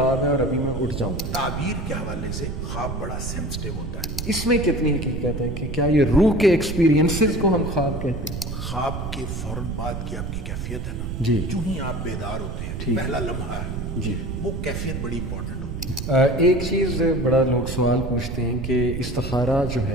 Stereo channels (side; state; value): right; noise; rumble, 5 dB below the sound